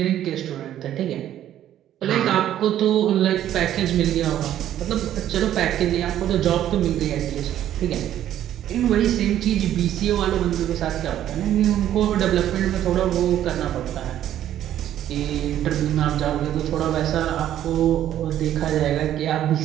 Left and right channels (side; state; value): left; quieter; 11.6 dB